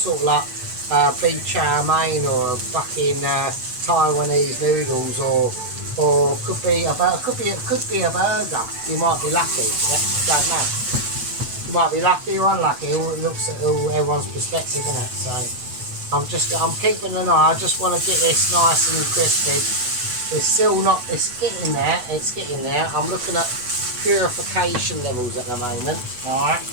of like beef chow mein or fucking Taiwanese noodles or could be a burger. You might be lucky. Yeah? Don't know. You might be lucky or unlucky. It all looks at everyone's perspective, isn't it? So I'm keeping an eye. I just want to get this nice and crispy. It's still not. It's getting there. It's getting there. I'm looking at purification levels at the moment. All right.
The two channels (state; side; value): late; left; 8.1 ms